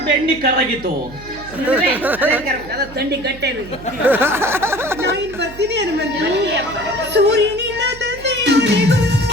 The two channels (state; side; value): noise; right; hum, 17 dB below the sound